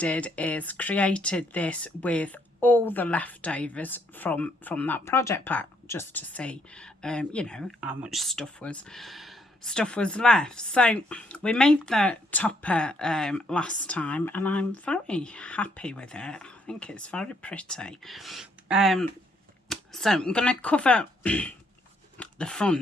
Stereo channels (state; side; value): normal; both; correlation 0.70